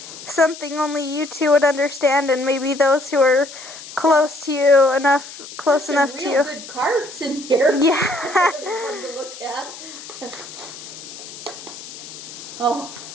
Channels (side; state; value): left; noise; hiss, 14 dB below the sound